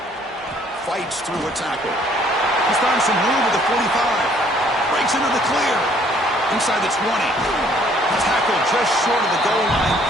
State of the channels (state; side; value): normal; both; correlation 0.61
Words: Fights through a tackle. He's found some room with the 45. Breaks into the clear. Inside the 20. Tackle just short of the goal line